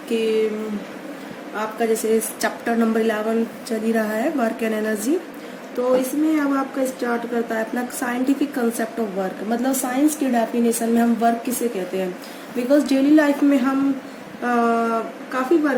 कि आपका जैसे चैप्टर नंबर 11 चल ही रहा है वर्क एंड एनर्जी। तो इसमें अब आपका स्टार्ट करता है अपना साइंटिफिक कंसेप्ट ऑफ वर्क, मतलब साइंस की डेफिनेशन में हम वर्क किसे कहते हैं। बिकॉज डेली लाइफ में हम काफ़ी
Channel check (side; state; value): both; identical; correlation 1.00